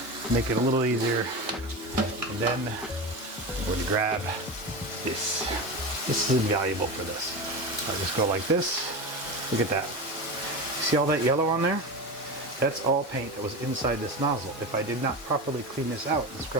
make it a little easier. And then I'm going to grab this. This is invaluable for this. I'll just go like this. Look at that. See all that yellow on there? That's all paint that was inside this nozzle. If I did not properly clean this out and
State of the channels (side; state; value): both; normal; correlation 0.23